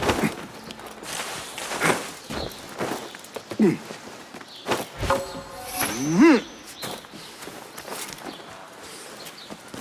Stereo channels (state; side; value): identical; both; correlation 1.00